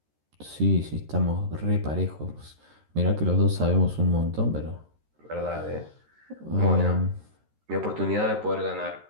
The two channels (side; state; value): left; late; 13 ms